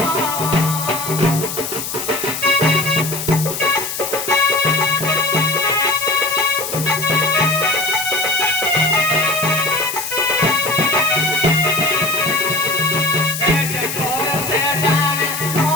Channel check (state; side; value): noise; left; hiss, 6 dB below the sound